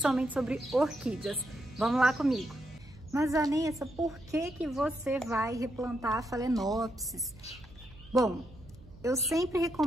sobre orquídeas. Vamos lá comigo. Mas Vanessa, por que você vai replantar a phalaenopsis? Bom, eu sempre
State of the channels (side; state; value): right; noise; hum, 21 dB below the sound